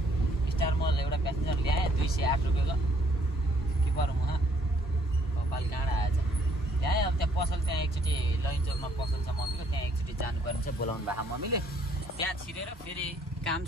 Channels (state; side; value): normal; both; correlation 0.65